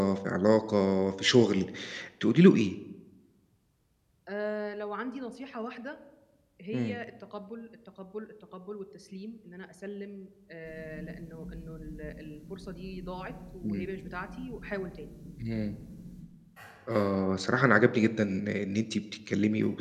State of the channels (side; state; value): both; identical; correlation 1.00